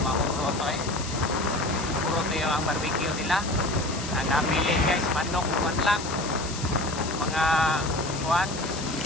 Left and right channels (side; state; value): left; noise; hiss, 10 dB below the sound